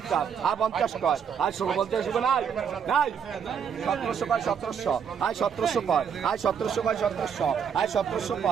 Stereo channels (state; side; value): quieter; left; 7.3 dB